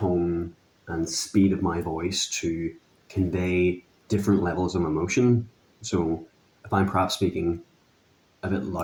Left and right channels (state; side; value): identical; both; correlation 1.00